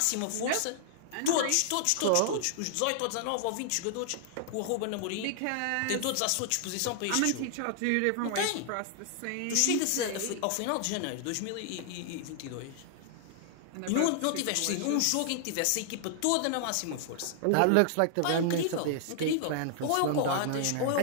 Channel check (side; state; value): both; different; correlation 0.00